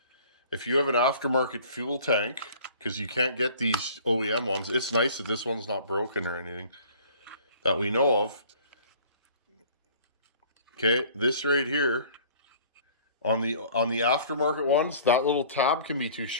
If you have an aftermarket fuel tank, because you can't get these OEM ones, it's nice that this one's not broken or anything that we know of. Okay, this right here, on the aftermarket ones, that little tab can be too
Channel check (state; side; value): inverted; both; correlation -0.50